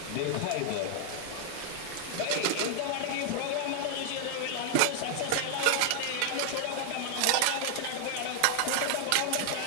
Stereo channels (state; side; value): different; both; correlation 0.00